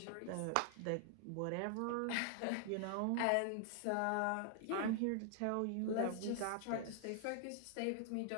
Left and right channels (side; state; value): both; different; correlation 0.00